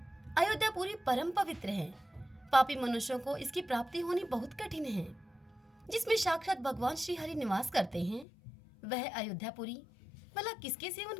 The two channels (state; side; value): drops out; right; at 8.2 s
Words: अयोध्या पूरी परम पवित्र है। पापी मनुष्यों को इसकी प्राप्ति होनी बहुत कठिन है। जिसमें साक्षात भगवान श्री हरि निवास करते हैं, वह अयोध्यापुरी भला किसके सेवन